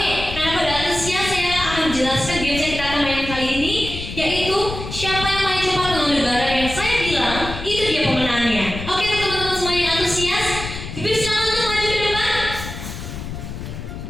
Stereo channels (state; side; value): noise; left; rumble, 8 dB below the sound